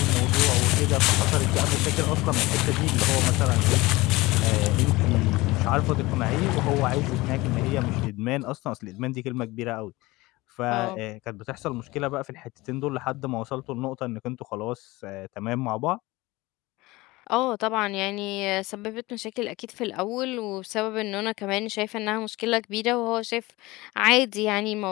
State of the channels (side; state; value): right; quieter; 20.9 dB